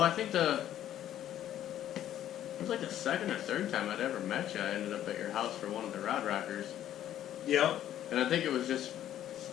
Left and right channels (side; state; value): right; quieter; 11.6 dB